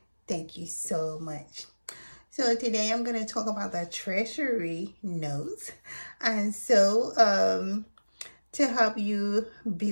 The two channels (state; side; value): inverted; both; correlation -1.00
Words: Thank you so much. So today I'm going to talk about the treasury notes. And so to help you